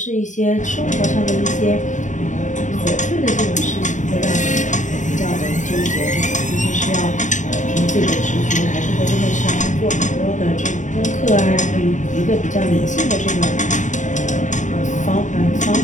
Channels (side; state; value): right; late; 0.36 ms